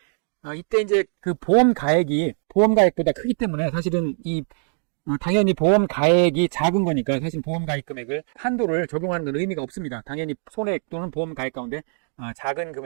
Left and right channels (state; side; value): silent; left; 61 dB below the other